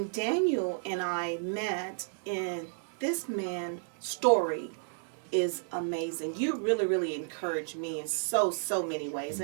Daniel and I met, and this man's story is amazing. You really, really encouraged me in so many ways.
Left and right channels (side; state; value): left; silent; 56 dB below the other